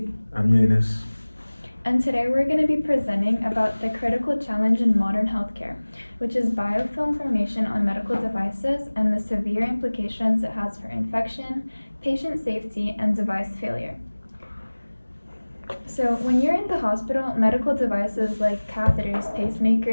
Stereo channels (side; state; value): both; inverted; correlation -1.00